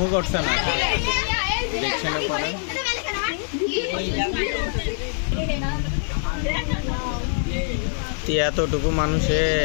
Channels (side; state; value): right; silent; 59 dB below the other